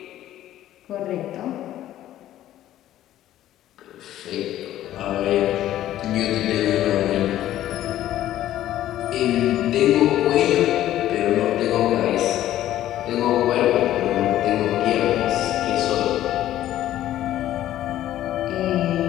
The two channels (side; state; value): right; quieter; 13.1 dB